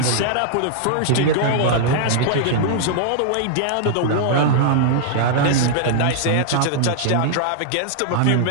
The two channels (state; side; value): different; both; correlation -0.01